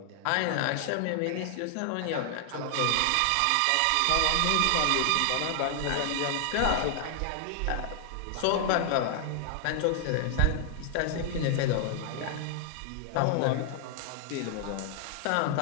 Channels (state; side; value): different; both; correlation 0.00